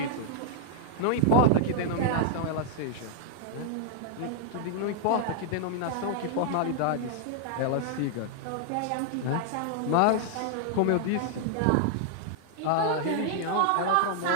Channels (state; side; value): different; both; correlation 0.00